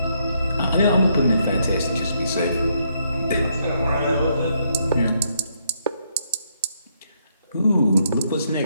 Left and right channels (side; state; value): both; inverted; correlation -0.75